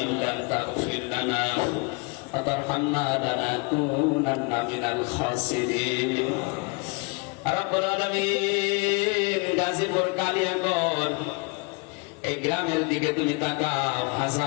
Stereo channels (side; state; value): right; quieter; 30.5 dB